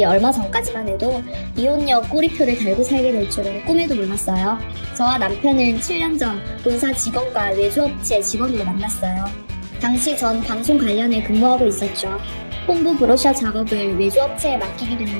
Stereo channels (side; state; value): both; inverted; correlation -1.00